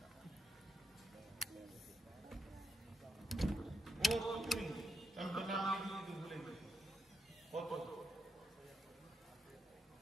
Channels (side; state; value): both; normal; correlation 0.83